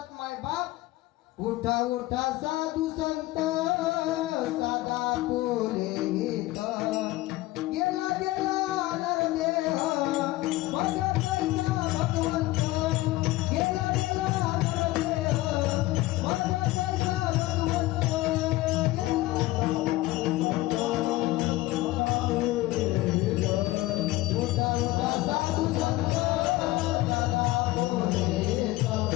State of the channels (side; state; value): right; quieter; 18.3 dB